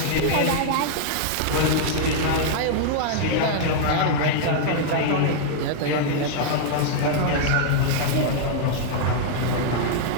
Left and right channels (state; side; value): different; both; correlation -0.01